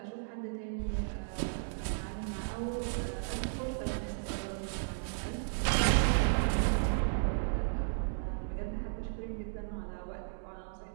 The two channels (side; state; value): left; silent; digital silence